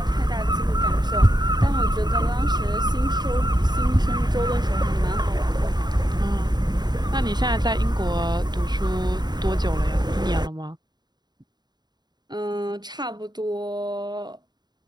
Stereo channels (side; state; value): left; late; 0.20 ms